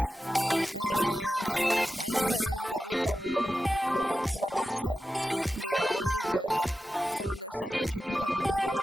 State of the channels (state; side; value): normal; both; correlation 0.92